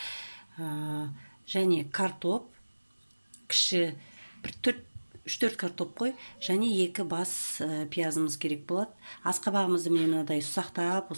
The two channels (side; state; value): both; inverted; correlation -1.00